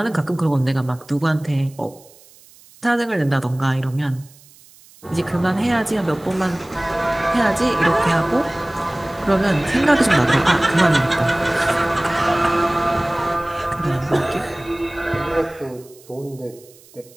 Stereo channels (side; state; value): right; noise; hiss, 25 dB below the sound